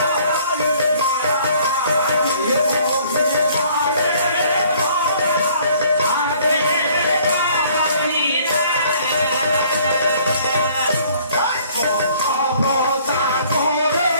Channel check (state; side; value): inverted; both; correlation -0.58